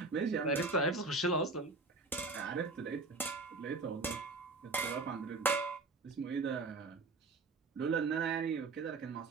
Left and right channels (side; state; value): left; quieter; 3.7 dB